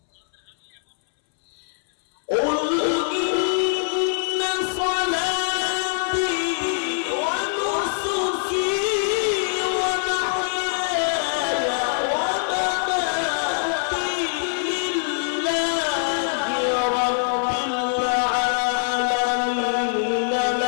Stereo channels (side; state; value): right; silent; 63 dB below the other